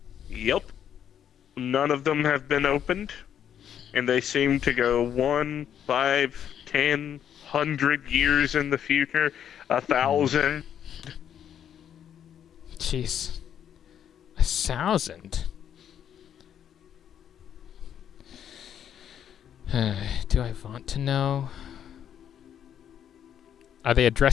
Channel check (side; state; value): right; quieter; 9.4 dB